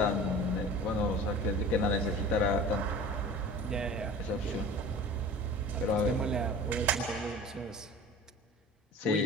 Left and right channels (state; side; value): normal; both; correlation 0.40